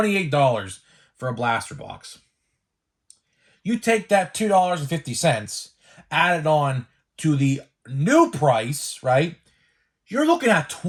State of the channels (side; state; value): both; identical; correlation 1.00